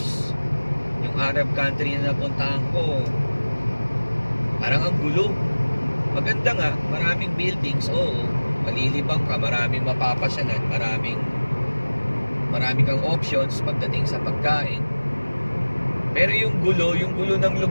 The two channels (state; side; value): inverted; both; correlation -1.00